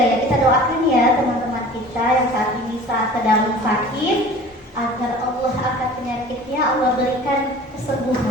ya. Kita doakan ya teman-teman kita yang saat ini sedang sakit, agar Allah angkat penyakitnya, Allah berikan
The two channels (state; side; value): normal; both; correlation 0.43